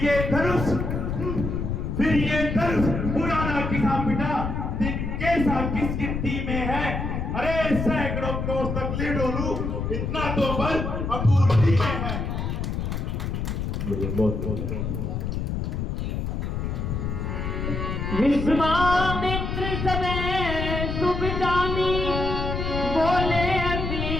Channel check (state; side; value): noise; left; rumble, 2 dB below the sound